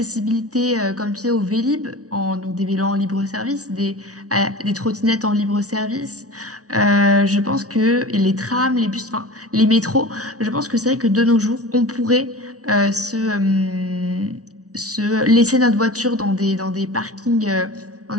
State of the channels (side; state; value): left; late; 0.67 ms